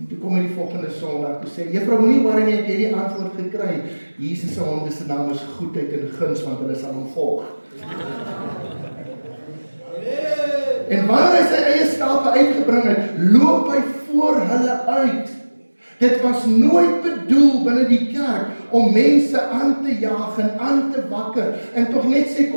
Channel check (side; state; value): both; inverted; correlation -1.00